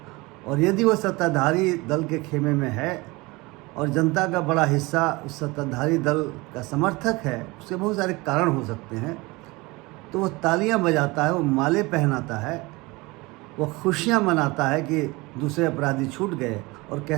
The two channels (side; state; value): left; quieter; 23.4 dB